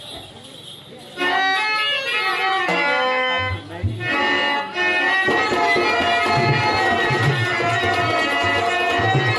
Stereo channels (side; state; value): both; identical; correlation 1.00